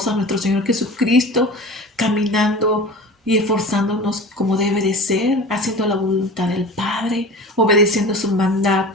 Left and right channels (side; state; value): both; normal; correlation 0.37